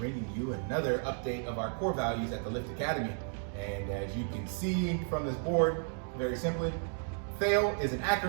you another update of our core values at the Lift Academy. And as you can see from this board, very simply, FAIL is an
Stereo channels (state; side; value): silent; left; 56 dB below the other